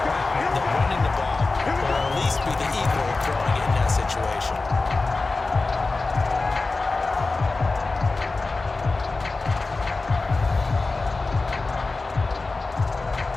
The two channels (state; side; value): quieter; right; 3.6 dB